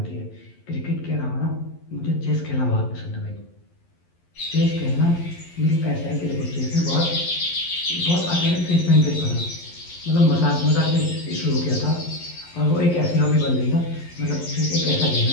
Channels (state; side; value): late; right; 11 ms